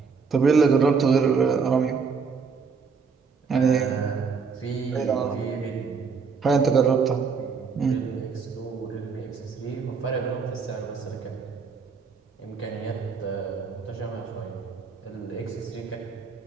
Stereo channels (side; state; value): left; quieter; 5.4 dB